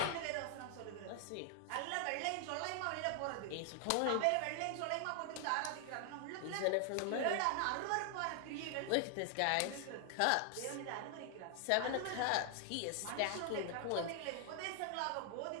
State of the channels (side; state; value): both; different; correlation 0.00